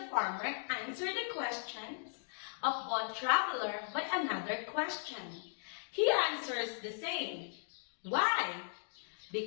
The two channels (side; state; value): right; silent; digital silence